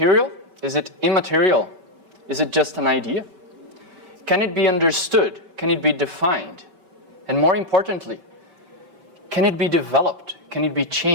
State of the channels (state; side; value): late; left; 5.3 ms